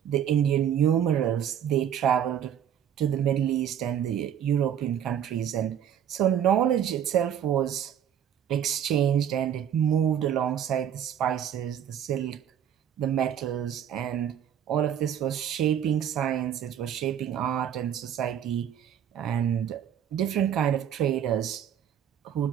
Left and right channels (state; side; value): quieter; left; 9.4 dB